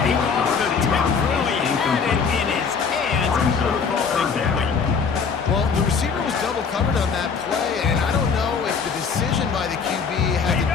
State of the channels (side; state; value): right; quieter; 5.7 dB